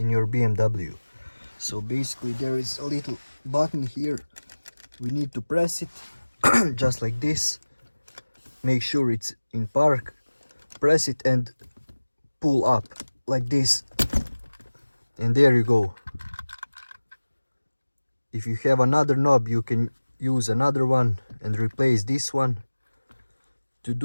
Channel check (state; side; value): inverted; both; correlation -1.00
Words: your BMW. So basically there is a little button here, we need to press it just like this, make sure it's in park, press it and pull up like this, and there you go. If you have another knob you can use another one and replace this one. To